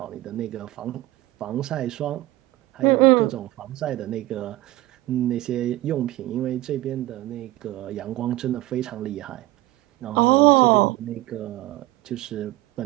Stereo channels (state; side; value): quieter; left; 17.0 dB